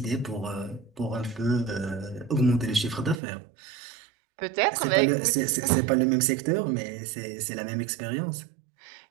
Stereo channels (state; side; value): drops out; left; at 3.2 s